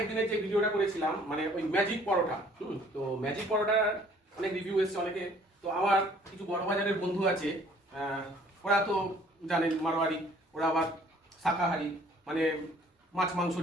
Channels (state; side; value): normal; both; correlation 0.57